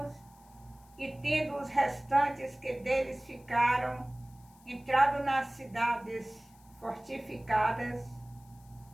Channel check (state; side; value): noise; left; hiss, 28 dB below the sound